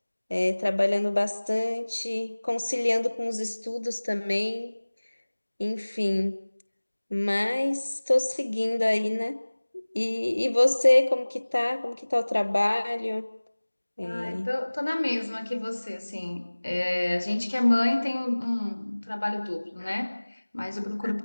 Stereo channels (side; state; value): both; inverted; correlation -1.00